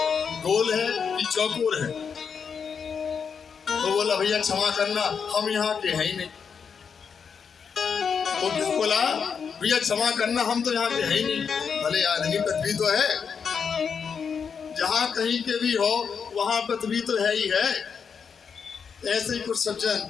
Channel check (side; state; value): right; quieter; 6.4 dB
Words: गोल है कि चौकोर है? तो बोला भैया क्षमा करना हम यहाँ के हैं ही नहीं। तो क्यों बोला? भैया क्षमा करना हम तो यहाँ के हैं ही नहीं। भले आदमी पृथ्वी तो है, जहाँ कहीं के भी हो वहाँ पृथ्वी तो है ही है। ऐसे ही कुछ सज्जन,